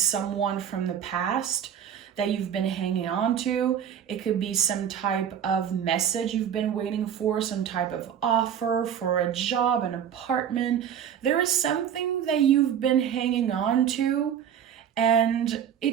from the past that you've been hanging on to. It could be some type of message you've been waiting for, some type of offer for a job, an apartment. There is something that you've been hanging on to, and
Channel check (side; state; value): left; quieter; 8.9 dB